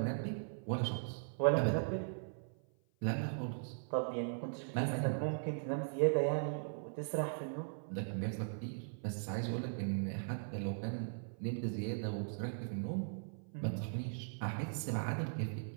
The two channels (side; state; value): left; silent; 52 dB below the other